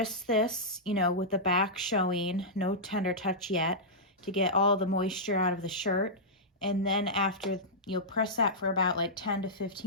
this, you know, with the back showing, no tender touch yet, to get all the moisture out of the shirt. And then after, you'll press that for about like 10 to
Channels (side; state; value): both; normal; correlation -0.12